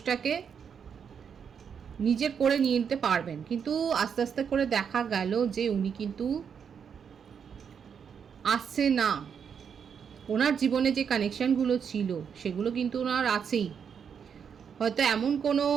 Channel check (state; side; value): quieter; left; 7.1 dB